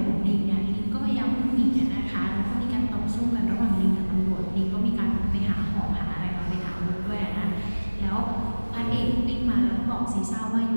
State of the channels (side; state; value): both; inverted; correlation -1.00